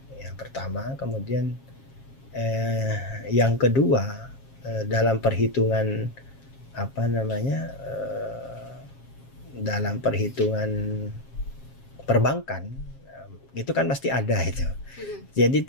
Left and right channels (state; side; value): late; right; 7.4 ms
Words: yang pertama. Kemudian yang kedua dalam perhitungan dalam perhitungan perbankan itu kan pasti ada itu. Jadi